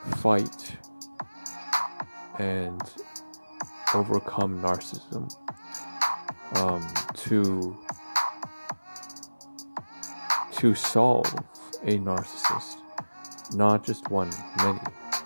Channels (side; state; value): both; inverted; correlation -1.00